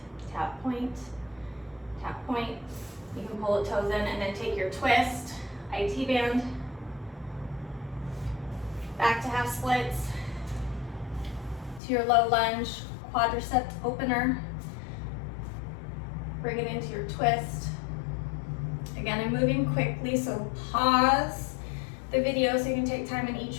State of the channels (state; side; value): drops out; right; at 11.8 s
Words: tap, point, tap, point. You can pull the toes in and then take your twist, IT band, back to half splits, to your low lunge, quadricep opener. Bring it into your twist. Again, I'm moving quickly, so pause the video so you can take time in each